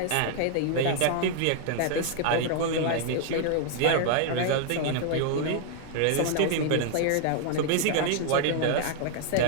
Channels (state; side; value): different; both; correlation 0.00